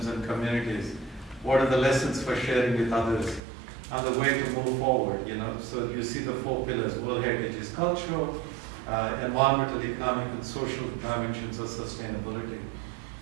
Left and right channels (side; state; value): left; drops out; at 3.4 s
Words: and communities? What are the lessons for sharing with others? And the way to move forward, So you see the 4 pillars. World Heritage is cultural, environmental, economic, and social dimensions of sustainability.